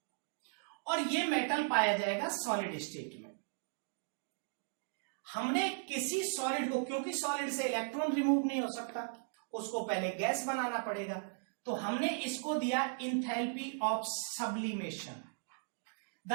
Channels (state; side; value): silent; left; digital silence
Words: और ये मेटल पाया जाएगा सॉलिड स्टेट में। हमने किसी सॉलिड को, क्योंकि सॉलिड से इलेक्ट्रॉन रिमूव नहीं हो सकता, उसको पहले गैस बनाना पड़ेगा, तो हमने इसको दिया enthalpy of sublimation,